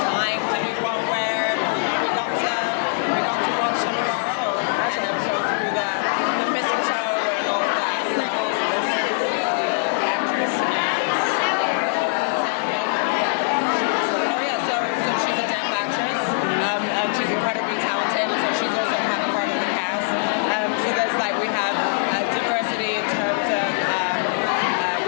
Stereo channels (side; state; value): right; silent; digital silence